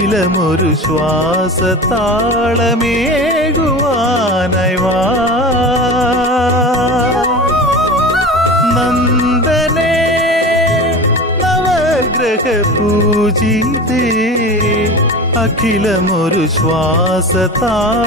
ശ്വാസതാളമേകുവാനായി വാ. നന്ദനേ നവഗ്രഹ പൂജിതേ അഖിലമൊരു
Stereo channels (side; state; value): both; normal; correlation 0.32